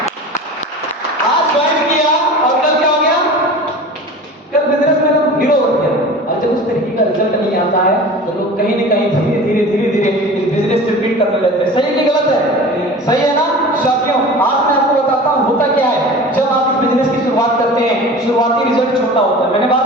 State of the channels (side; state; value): both; normal; correlation 0.37